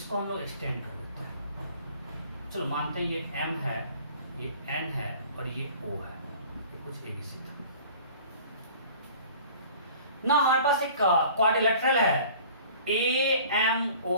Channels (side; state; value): both; inverted; correlation -0.47